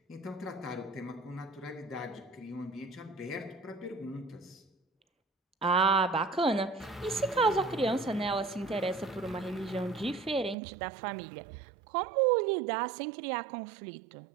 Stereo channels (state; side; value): drops out; left; at 10.6 s